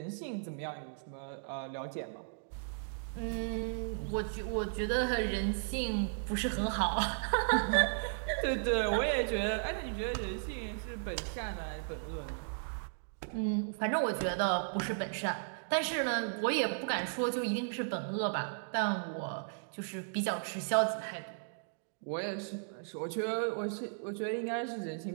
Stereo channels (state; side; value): silent; left; digital silence